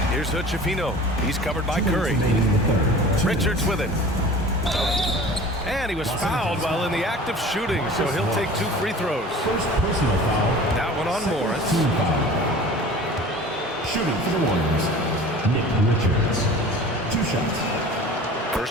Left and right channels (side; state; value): both; normal; correlation 0.42